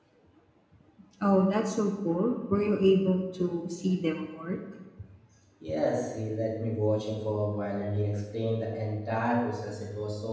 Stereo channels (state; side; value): identical; both; correlation 1.00